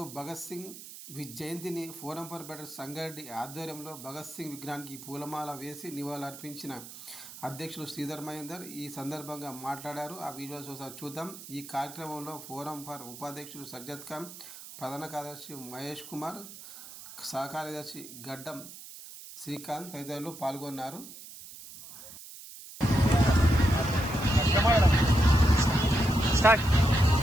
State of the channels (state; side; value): noise; right; hiss, 14 dB below the sound